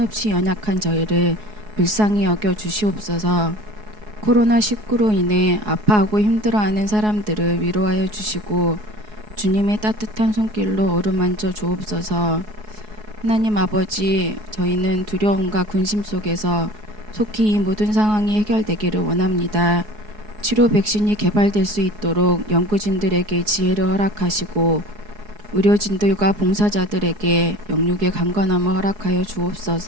연약한 저희를 불쌍히 여겨 주시옵소서. 코로나19로 인해 아파하고 힘들어하는 사람들을 위로하여 주시고 주님의 따뜻한 손길로 어루만져 주옵소서. 하나님 아버지, 저희는 두려움과 근심 속에서 속히 이 모든 상황이 해결되기를 원합니다. 치료 백신이 개발될 수 있도록 연구진들에게 지혜를 허락하시고 의료진들과 봉사자들에게 영육의 강건함을 허락하여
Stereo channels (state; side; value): late; left; 4.7 ms